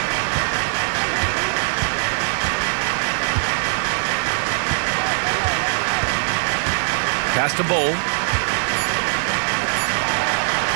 Pass to Bull.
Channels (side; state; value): left; silent; digital silence